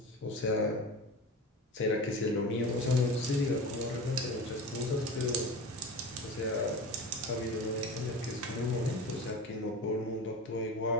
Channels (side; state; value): both; normal; correlation 0.31